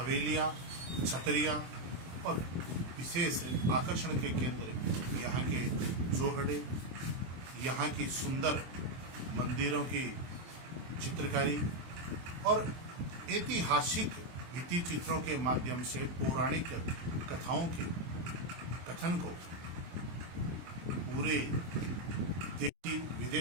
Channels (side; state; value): left; late; 24 ms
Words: छतरियां और विशेष आकर्षण के केंद्र यहाँ के जोहड़े, यहाँ की सुंदर मंदिरों की चित्रकारी और ऐतिहासिक भित्ति चित्रों के माध्यम से पौराणिक कथाओं के कथन को पूरे देशी